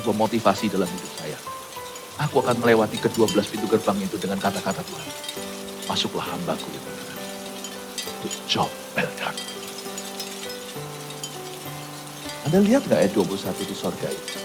motivasi dalam hidup saya. Aku akan melewati ke-12 pintu gerbang itu dengan kata-kata Tuhan. Masuklah hambaku itu. Good job, well done. Anda lihat gak ayat 21 di sorga itu?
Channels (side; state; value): both; identical; correlation 1.00